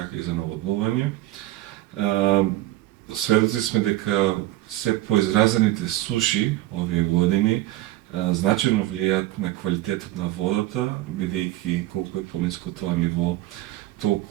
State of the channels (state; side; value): quieter; left; 15.8 dB